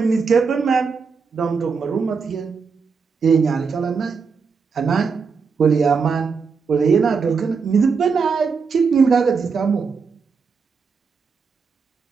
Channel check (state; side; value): quieter; left; 5.3 dB